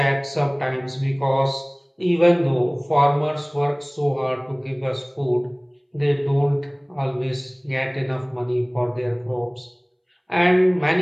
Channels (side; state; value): both; identical; correlation 1.00